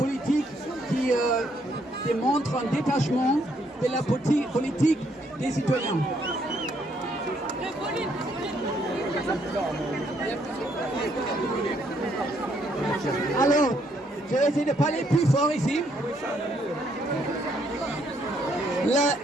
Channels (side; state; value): both; normal; correlation 0.71